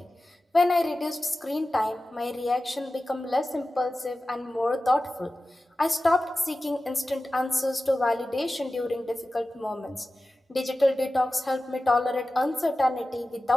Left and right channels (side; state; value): both; normal; correlation 0.95